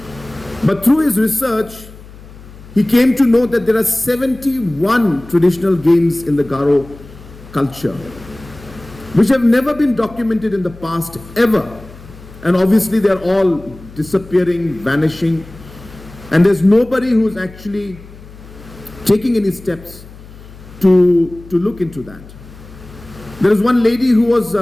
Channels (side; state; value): left; noise; hum, 19 dB below the sound